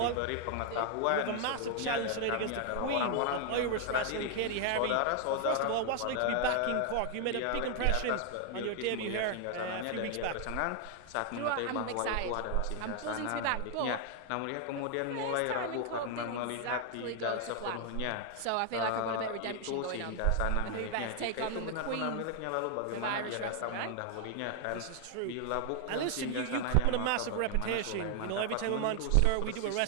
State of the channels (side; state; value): both; different; correlation 0.00